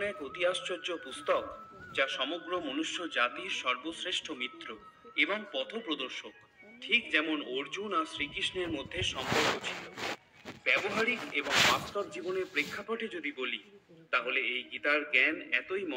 এক অতি আশ্চর্য পুস্তক যা সমগ্র মনুষ্য জাতির সর্বশ্রেষ্ঠ মিত্র এবং পথপ্রদর্শক। ঠিক যেমন অর্জুন আর শ্রীকৃষ্ণের মধ্যে সম্পর্ক ছিল। ব্যবহারিক এবং বাস্তব জীবনের প্রেক্ষাপটে যদি বলি, তাহলে এই গীতার জ্ঞান এতই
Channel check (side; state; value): both; identical; correlation 1.00